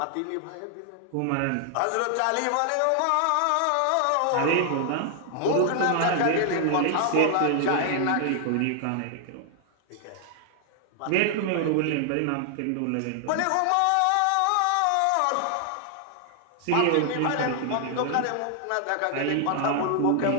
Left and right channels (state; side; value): different; both; correlation 0.00